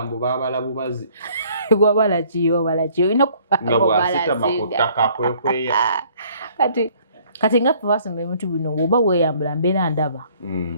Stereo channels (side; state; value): both; inverted; correlation -0.59